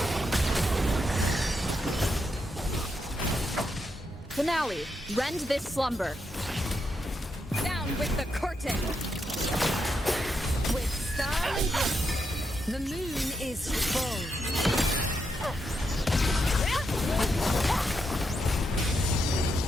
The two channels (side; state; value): both; normal; correlation 0.82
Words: Finale, rend this slumber. Down with the curtain. With style and grace, the moon is full.